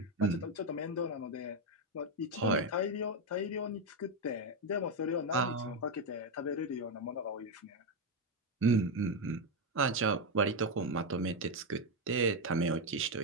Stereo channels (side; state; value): both; normal; correlation 0.05